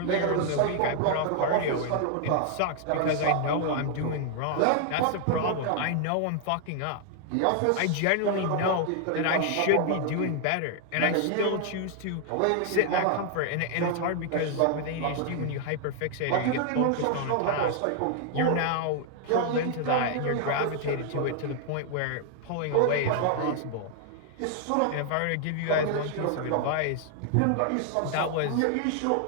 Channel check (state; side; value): different; both; correlation 0.00